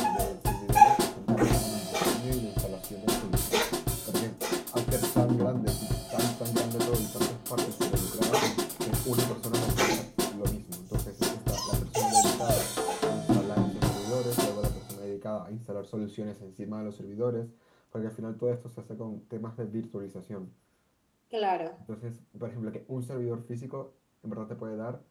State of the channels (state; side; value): identical; both; correlation 1.00